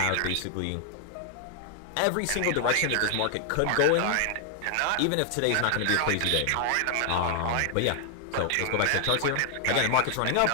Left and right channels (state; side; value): different; both; correlation 0.00